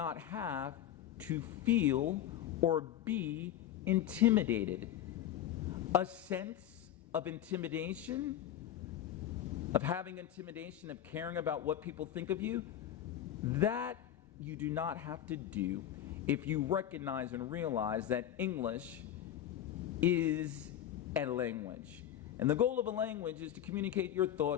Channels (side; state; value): right; quieter; 11.3 dB